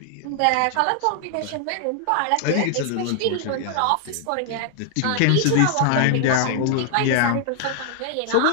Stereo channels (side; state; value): both; different; correlation 0.00